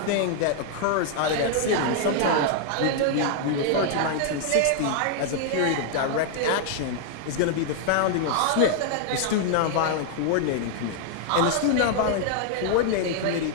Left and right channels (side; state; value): both; different; correlation 0.00